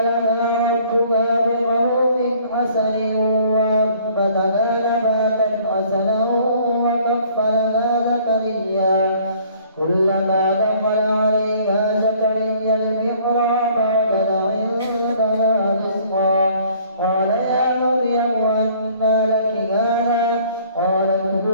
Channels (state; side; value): inverted; both; correlation -0.56